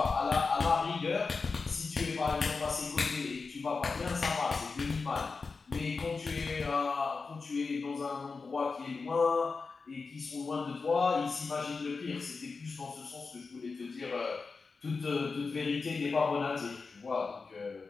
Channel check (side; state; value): right; quieter; 4.5 dB